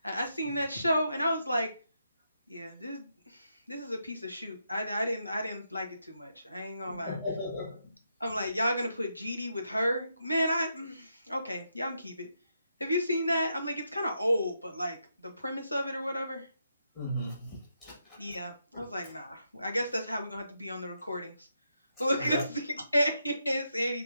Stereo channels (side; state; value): both; inverted; correlation -0.82